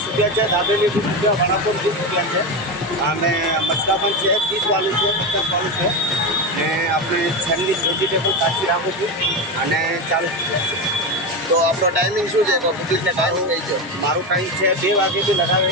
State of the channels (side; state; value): both; normal; correlation 0.16